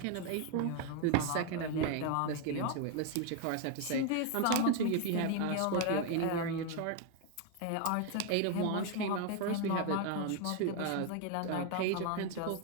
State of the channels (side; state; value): both; different; correlation 0.01